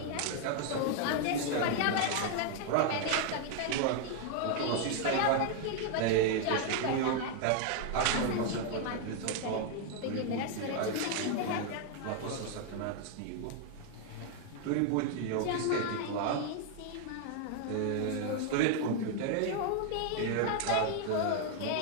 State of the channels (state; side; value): different; both; correlation 0.00